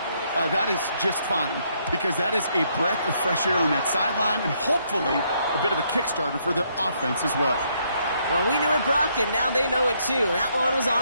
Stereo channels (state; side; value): inverted; both; correlation -0.72